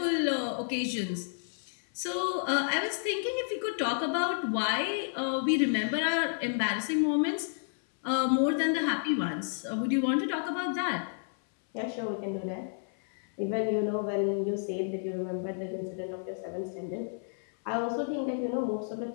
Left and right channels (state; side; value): silent; right; 57 dB below the other